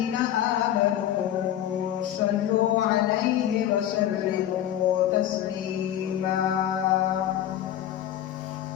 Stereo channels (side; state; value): right; quieter; 11.6 dB